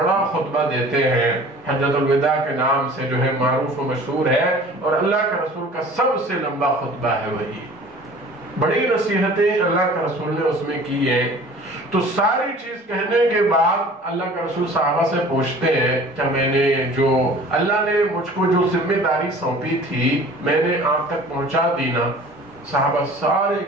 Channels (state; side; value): normal; both; correlation 0.46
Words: خطبہ دیتے ہیں حجۃ الوداع کے نام سے جو ہے معروف و مشہور ہے، اور اللہ کا رسول کا سب سے لمبا خطبہ ہے وہی، بڑی نصیحتیں اللہ کا رسول نے اس میں کی ہیں۔ تو ساری چیز کہنے کے بعد اللہ کا رسول صحابہ سے پوچھتے ہیں کہ میں نے جو اللہ نے مجھ کو جو ذمہ داری سونپی تھی میں نے آپ تک پہنچا دی نا؟ صحابہ سارے